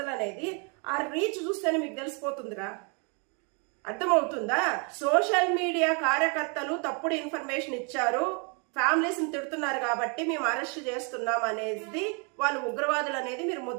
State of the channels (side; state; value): left; quieter; 35.7 dB